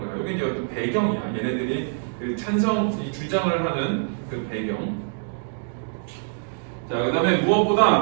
여기 이제 어떤 배경이야. 얘네들이 그 찬성, 이 주장을 하는 그 배경. 자, 그 다음에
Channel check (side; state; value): left; silent; digital silence